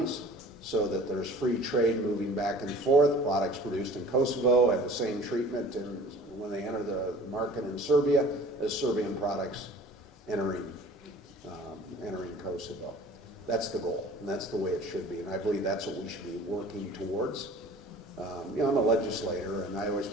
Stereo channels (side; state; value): both; normal; correlation 0.46